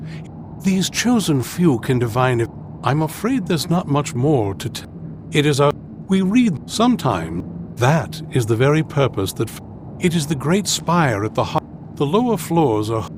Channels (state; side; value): identical; both; correlation 1.00